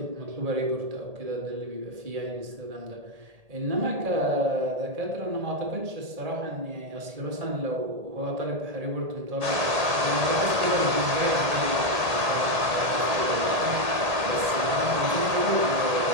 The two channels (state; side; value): late; left; 1.8 ms